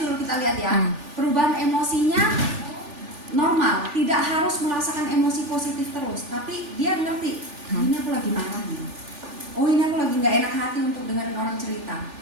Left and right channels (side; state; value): left; late; 3.4 ms